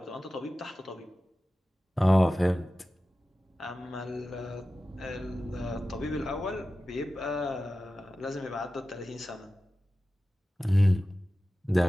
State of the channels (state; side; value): normal; both; correlation 0.94